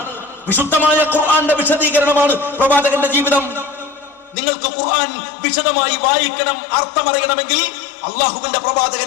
വിശുദ്ധമായ ഖുർആന്റെ വിശദീകരണമാണ് പ്രവാചകന്റെ ജീവിതം. നിങ്ങൾക്ക് ഖുർആൻ വിശദമായി വായിക്കണം, അർത്ഥമറിയണമെങ്കിൽ അള്ളാഹുവിന്റെ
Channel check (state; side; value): drops out; right; at 4.4 s